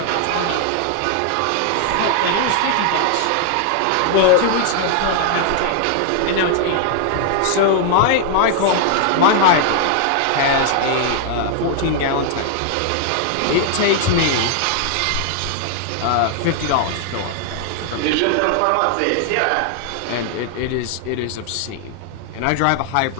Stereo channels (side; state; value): both; different; correlation 0.00